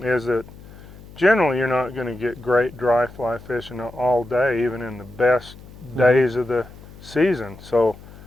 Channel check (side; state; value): left; noise; hum, 19 dB below the sound